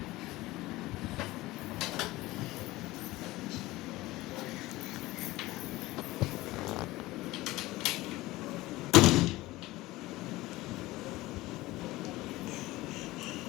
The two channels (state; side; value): quieter; right; 18.9 dB